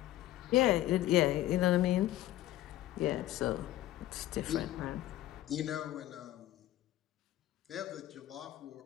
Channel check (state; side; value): quieter; right; 14.5 dB